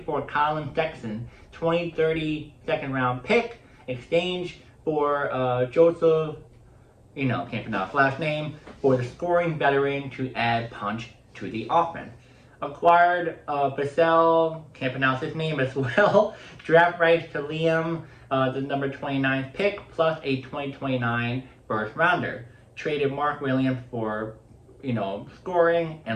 for Colin Sexton, 2030 second round pick, exchange for Joseph, can't pronounce his last name, for the scoring veteran to add punch to the offense. Acquired Basel, can't pronounce his name as well, draft rights to Liam, the number 29 pick, plus a 2029 first rounder. Traded Mark Williams for, scoring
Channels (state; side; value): identical; both; correlation 1.00